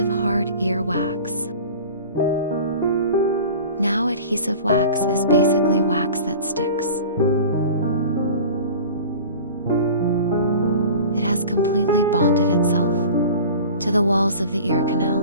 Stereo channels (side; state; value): both; inverted; correlation -0.39